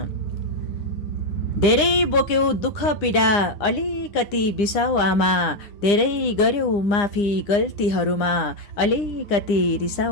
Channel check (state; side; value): late; right; 9.8 ms